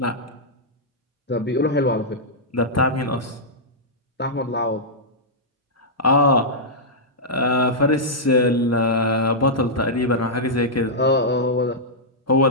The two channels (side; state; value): both; normal; correlation -0.10